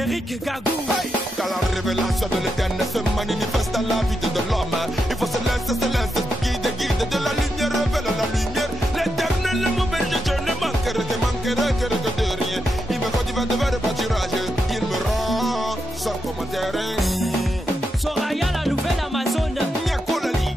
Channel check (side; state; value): both; normal; correlation 0.85